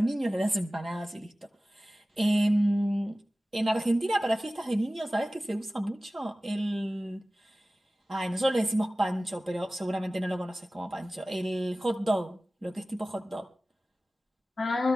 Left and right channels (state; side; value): normal; both; correlation 0.97